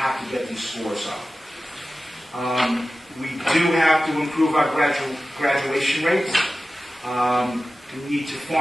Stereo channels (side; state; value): both; normal; correlation 0.95